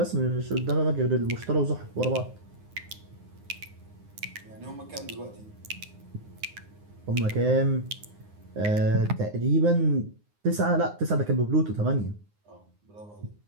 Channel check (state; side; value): late; left; 9.7 ms